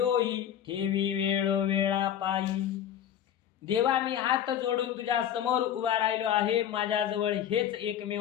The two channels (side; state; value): right; quieter; 10.0 dB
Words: ठेवी वेळ वेळा पायी. देवा मी हात जोडून तुझ्या समोर उभा राहिलो आहे, माझ्याजवळ हेच